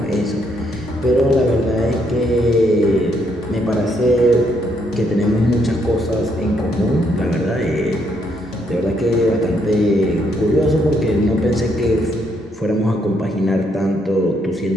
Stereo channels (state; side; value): normal; both; correlation 0.73